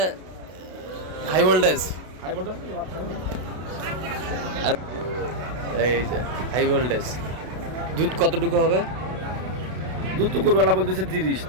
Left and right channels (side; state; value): left; late; 32 ms